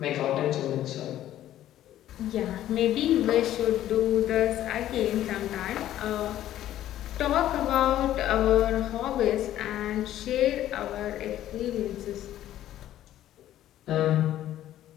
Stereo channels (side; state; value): right; quieter; 12.7 dB